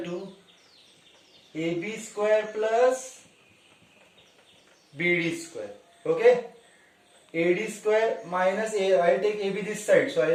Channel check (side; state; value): both; identical; correlation 1.00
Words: to AB square plus BD square. Okay, AD square minus A, I'll take AB this side, so